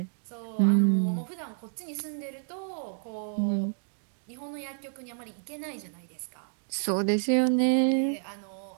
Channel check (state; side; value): silent; left; digital silence